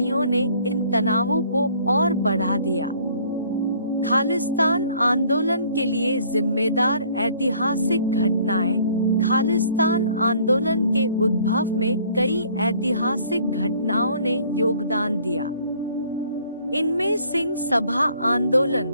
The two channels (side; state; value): both; inverted; correlation -0.58